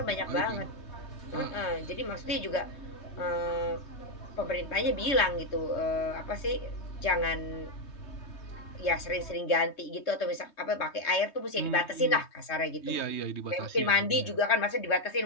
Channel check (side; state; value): right; late; 3.2 ms